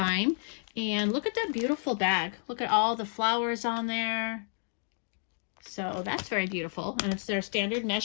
And look at that beautiful bag. Look at all the flowers on there. So that's very beautiful, and it's their standard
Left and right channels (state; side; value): silent; right; 57 dB below the other